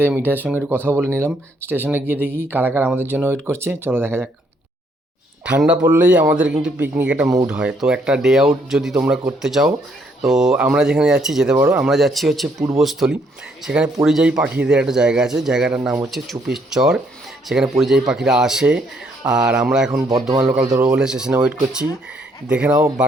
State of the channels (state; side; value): normal; both; correlation 0.70